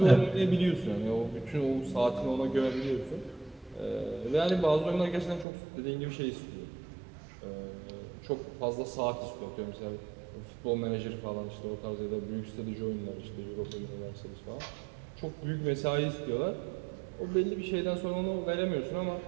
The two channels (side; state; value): left; drops out; at 5.5 s